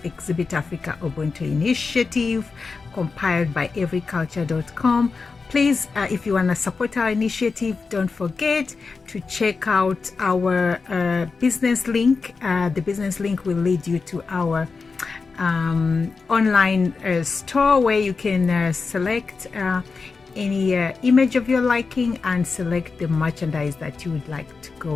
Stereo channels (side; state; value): right; quieter; 4.6 dB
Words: Exhibit Africa Ubuntu Initiative, compiled by everyculture.com. Please, if you want to support our initiative, don't forget to check out our business link. The business link will lead you to our online store where you can select any image of your liking and select the merchandise that you would like to go